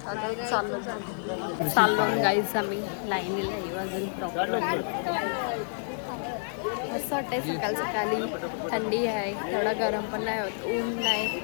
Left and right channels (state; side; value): silent; right; 59 dB below the other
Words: आता चाललो गाईस आम्ही लाईनीला येऊ अजून प्रॉपर. मस्त वाटतंय सकाळी, थंडी आहे, तेवढा गरम पण नाही होत, ऊन नाही,